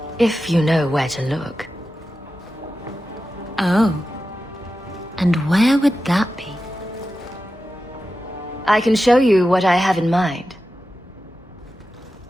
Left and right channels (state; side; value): normal; both; correlation 0.92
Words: if you know where to look. Oh. And where would that be? I can show you what I have in mind.